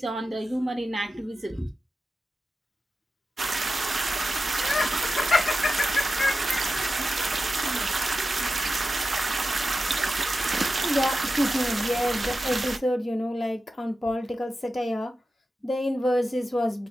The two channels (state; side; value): normal; both; correlation 0.92